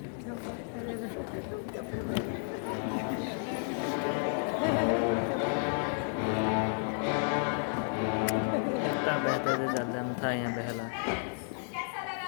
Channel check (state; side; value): silent; right; 56 dB below the other